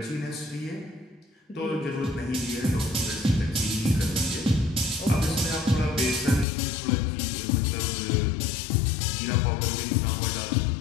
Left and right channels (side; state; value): right; drops out; at 6.5 s